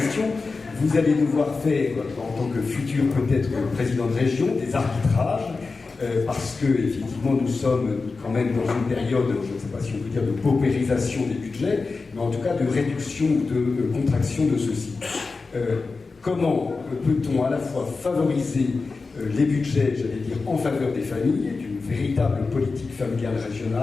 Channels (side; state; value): right; quieter; 4.1 dB